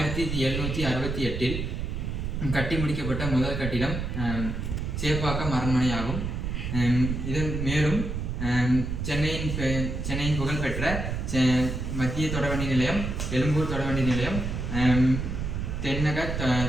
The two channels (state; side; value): noise; right; rumble, 3 dB below the sound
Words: கட்டி முடிக்கப்பட்ட முதல் கட்டிடம் சேப்பாக்கம் அரண்மனை ஆகும். இதன் மேலும் சென்னையின் புகழ்பெற்ற மத்திய தொடர்வண்டி நிலையம், எழும்பூர் தொடர்வண்டி நிலையம், தென்னக